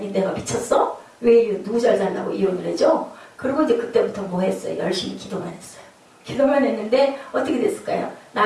내가 미쳤어? 왜 누구 잘 살라고 이혼을 해줘? 그리고 이제 그때부터 뭐 했어요? 열심히 기도만 했어요. 기도만 했는데 어떻게 됐을까요?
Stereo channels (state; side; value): identical; both; correlation 1.00